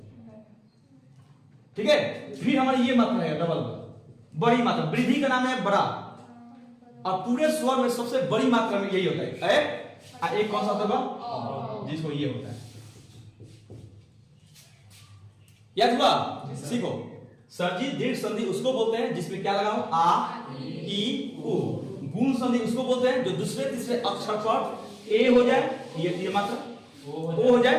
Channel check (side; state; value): both; identical; correlation 1.00